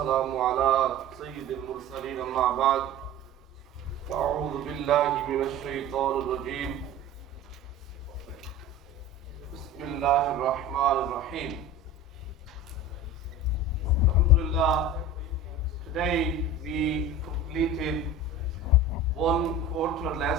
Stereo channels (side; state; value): both; normal; correlation 0.35